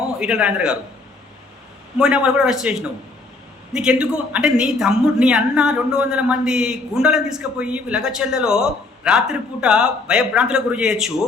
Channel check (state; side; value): quieter; right; 3.5 dB